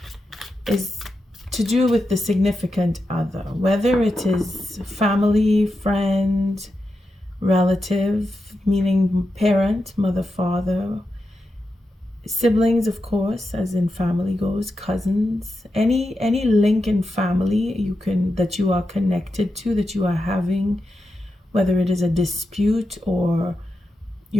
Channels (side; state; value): both; normal; correlation 0.88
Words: is to do with the significant other, whether it is family, friend, relative, meaning parent, mother, father, siblings, of course, as in family goes, cousins, any link in family that you are connected to, that you are having, whether it is a dispute or